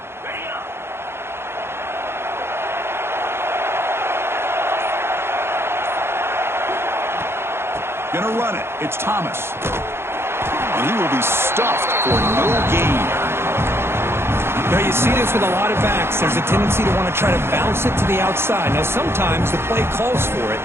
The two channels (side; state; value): left; late; 0.12 ms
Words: Going to run it. It's Thomas. And he will be stuffed for no gain. Now you see this with a lot of backs. There's a tendency to want to try to bounce it to the outside. Now sometimes the play calls for it,